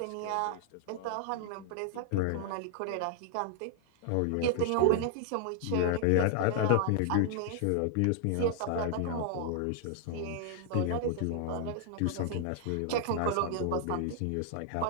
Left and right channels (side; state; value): both; different; correlation 0.00